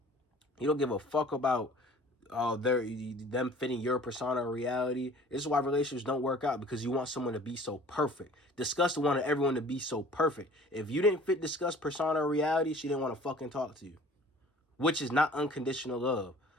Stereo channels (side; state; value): both; normal; correlation 0.49